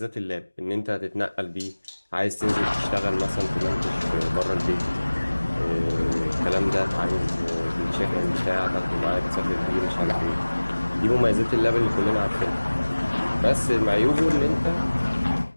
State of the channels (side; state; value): both; inverted; correlation -1.00